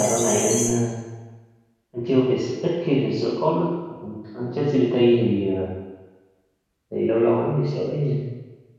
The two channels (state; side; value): identical; both; correlation 1.00